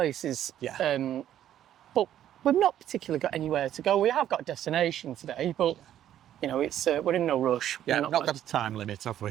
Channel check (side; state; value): left; quieter; 11.3 dB